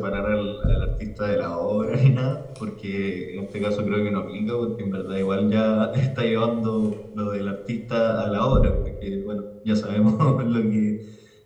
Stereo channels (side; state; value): both; identical; correlation 1.00